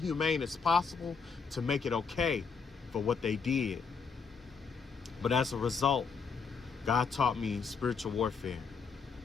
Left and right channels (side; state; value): right; quieter; 5.5 dB